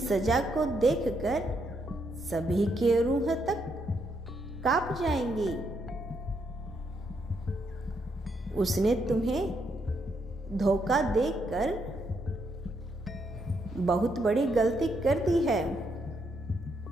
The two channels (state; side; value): normal; both; correlation 0.77